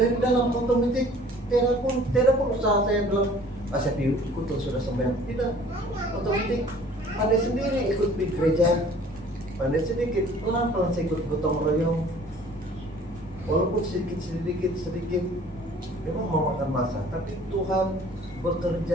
dalam, otomatis tidak perlu usaha. Saya bilang, saya ikut sudah sembahyang. Tidak, otomatis pandai sendiri ikut di gereja. Pandai sedikit, pelan-pelan saya ikut gotong royong. Walaupun sedikit memang memakan masa, tapi Tuhan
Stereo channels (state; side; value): normal; both; correlation 0.51